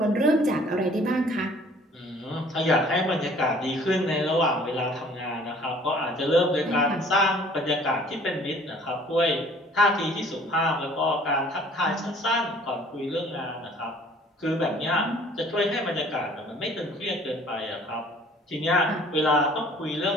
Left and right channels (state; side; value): normal; both; correlation 0.54